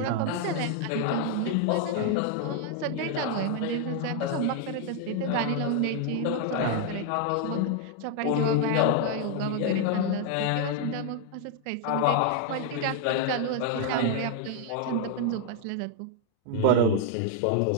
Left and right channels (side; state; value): both; different; correlation 0.00